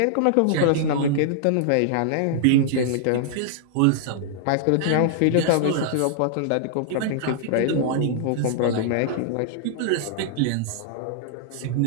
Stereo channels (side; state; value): both; different; correlation -0.01